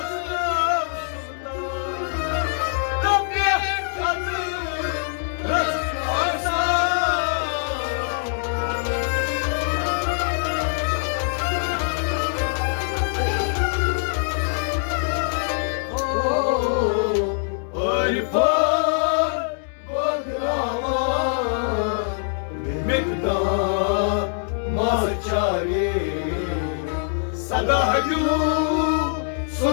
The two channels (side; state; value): right; silent; digital silence